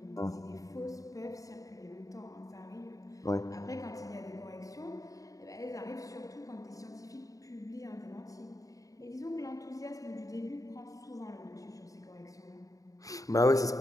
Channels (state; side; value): late; right; 0.16 ms